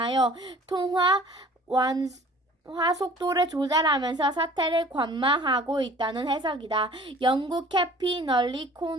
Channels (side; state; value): both; normal; correlation 0.48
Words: 통화 완화 속도를 조절하면서 사태를 관망하고 있다는 해석이다. 영국